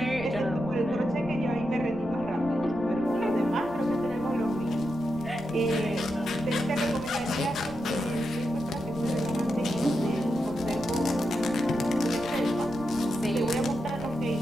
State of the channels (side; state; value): right; noise; rumble, 16 dB below the sound